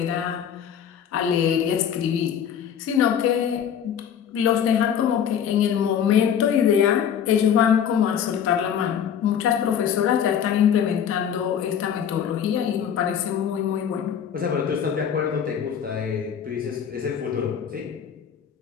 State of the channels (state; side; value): quieter; right; 8.5 dB